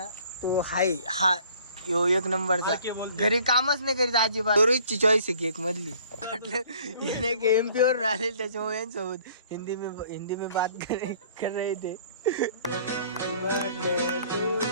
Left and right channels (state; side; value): inverted; both; correlation -0.55